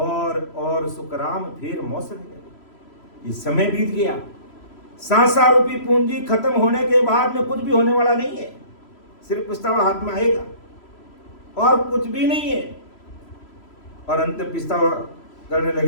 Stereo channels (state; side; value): late; right; 3.0 ms